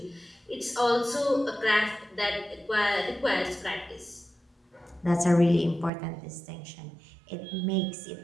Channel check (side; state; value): left; drops out; at 5.9 s